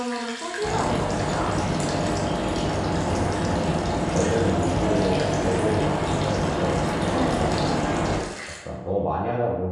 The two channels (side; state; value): both; identical; correlation 1.00